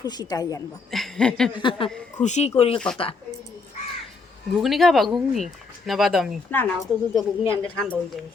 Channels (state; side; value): quieter; right; 4.3 dB